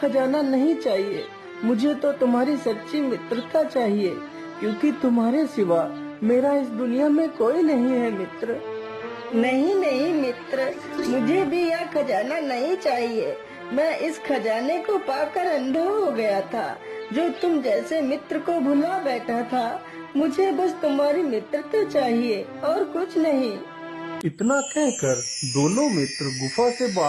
नहीं चाहिए। मुझे तो तुम्हारी सच्ची मित्रता चाहिए, क्योंकि तुम्हारे सिवा मेरा इस दुनिया में कोई नहीं है मित्र। नहीं नहीं मित्र, मुझे भी यह खजाना नहीं चाहिए। मैं इस खजाने को पाकर अंधा हो गया था, जो तुम जैसे मित्र को भुला बैठा था। मुझे बस तुम्हारी मित्रता चाहिए और कुछ नहीं। इतना कहकर दोनों मित्र गुफा से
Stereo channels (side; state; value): both; identical; correlation 1.00